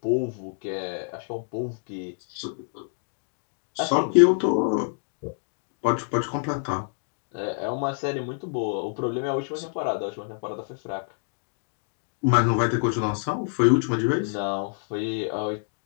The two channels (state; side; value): silent; right; 60 dB below the other